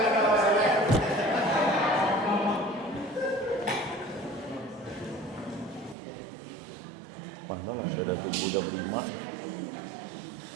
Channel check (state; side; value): drops out; left; at 6.0 s